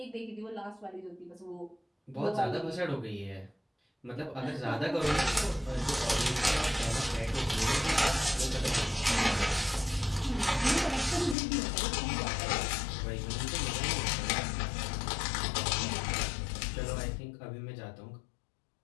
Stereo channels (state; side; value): drops out; right; at 11.4 s